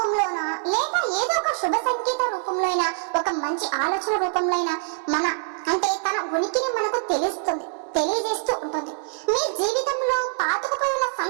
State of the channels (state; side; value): silent; left; digital silence